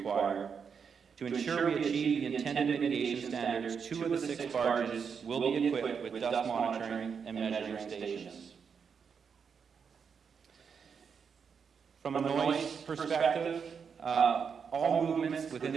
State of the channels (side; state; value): left; quieter; 6.4 dB